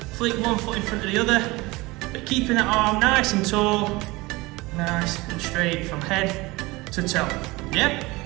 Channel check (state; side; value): quieter; left; 22.2 dB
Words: flick one foot in front of the other, but keeping that arm nice and tall, nice and straight from head to toe. Yeah?